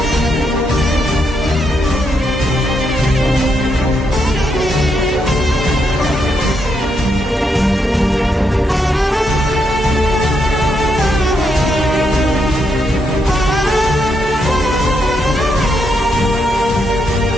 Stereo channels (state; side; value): normal; both; correlation 0.79